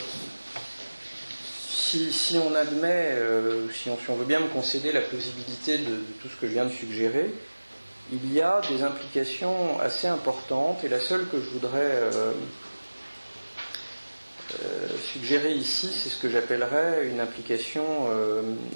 si on admet, si on veut bien me concéder la plausibilité de tout ce que je viens de suggérer, il y a des implications assez importantes, et la seule que je voudrais suggérer ici, c'est ce que j'appellerais une implication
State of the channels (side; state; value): both; inverted; correlation -1.00